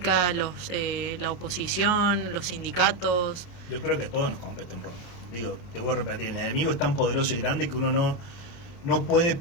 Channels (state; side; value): late; right; 29 ms